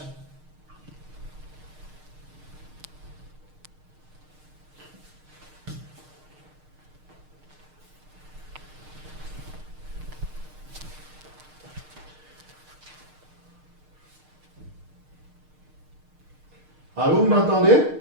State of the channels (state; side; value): late; left; 6.5 ms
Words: Allô, vous m'entendez?